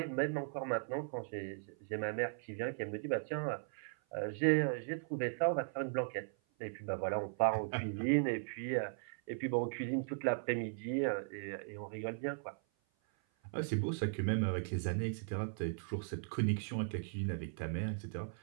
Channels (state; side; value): silent; left; 52 dB below the other